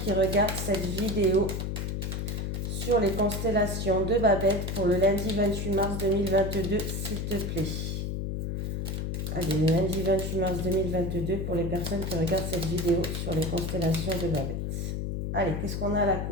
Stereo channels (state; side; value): noise; left; hum, 2 dB below the sound